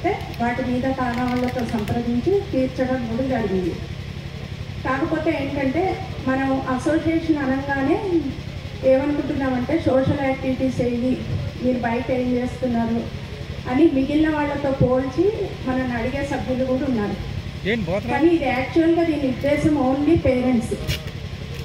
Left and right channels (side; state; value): both; identical; correlation 1.00